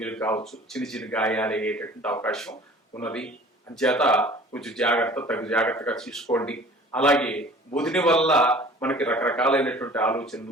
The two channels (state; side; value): normal; both; correlation 0.47